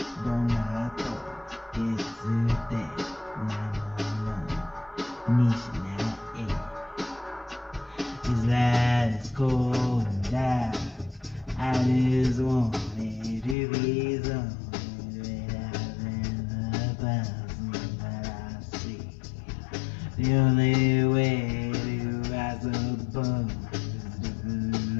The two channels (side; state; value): right; drops out; at 13.6 s